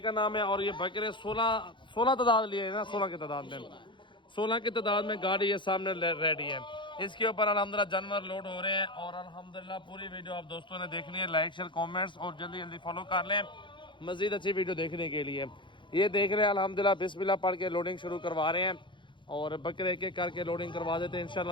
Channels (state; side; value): late; right; 0.23 ms